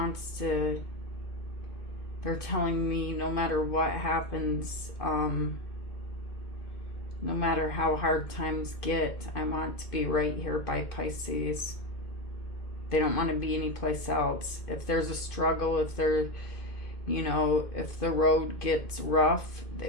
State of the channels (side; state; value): right; late; 2.5 ms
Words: to, they're telling me no matter what happens, no matter how hard times get, I want to be right here by Pisces. They don't want to be anyplace else. If there's a struggle, if they're, you know, if the road gets rough,